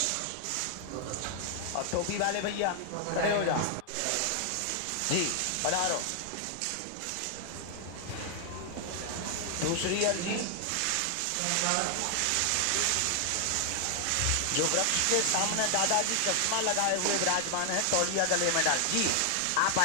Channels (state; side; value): different; both; correlation 0.00